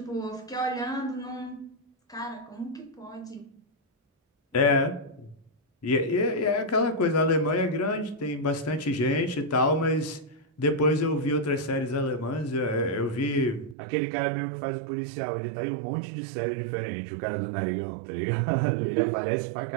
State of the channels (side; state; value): left; drops out; at 13.8 s